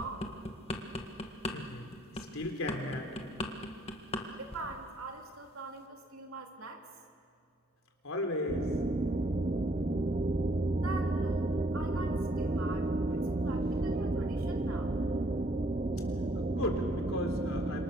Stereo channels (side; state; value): both; normal; correlation 0.66